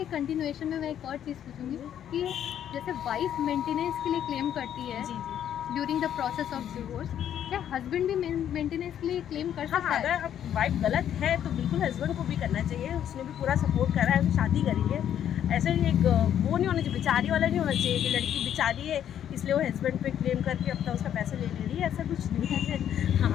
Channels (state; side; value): quieter; right; 10.1 dB